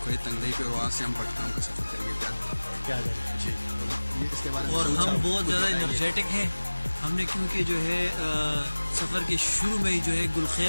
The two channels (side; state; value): both; inverted; correlation -1.00